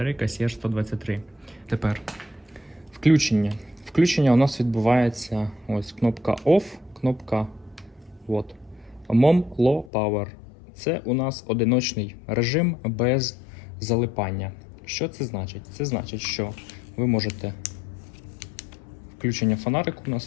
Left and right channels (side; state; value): right; drops out; at 9.9 s